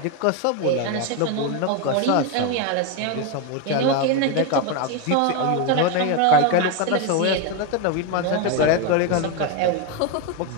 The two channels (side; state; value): both; different; correlation 0.02